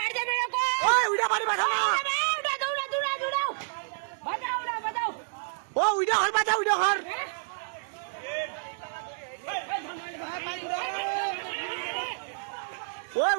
ওই উইডা বাড়ি বাঁচাও না, ও উইডা হর বাঁচা, উইডা হর ও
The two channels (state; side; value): silent; left; digital silence